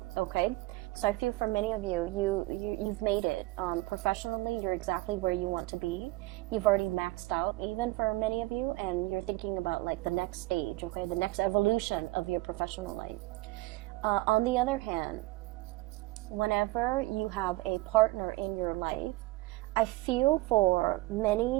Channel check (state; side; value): quieter; left; 20.5 dB